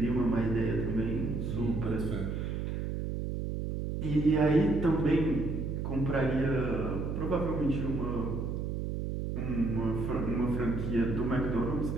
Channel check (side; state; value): right; noise; hum, 2 dB below the sound